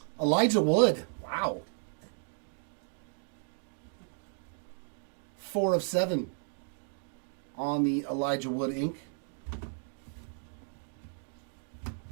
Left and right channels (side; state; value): left; silent; digital silence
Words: Elijah Wood. Wow. 4 of 7 on the Elijah Wood ink.